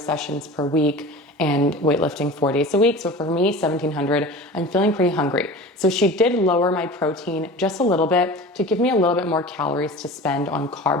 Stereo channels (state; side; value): normal; both; correlation 0.36